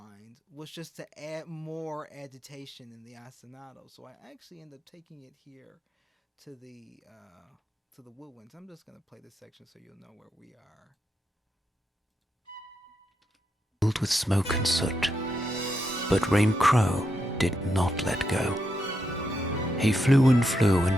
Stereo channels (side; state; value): both; normal; correlation 0.83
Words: was just to add more agitation in the ostinato. So I actually end up taking it here to the woodwinds. I'm just going to play this section so you'll know where we are. filled with smoke and soot, but Rain Crow did not let go. He flew, and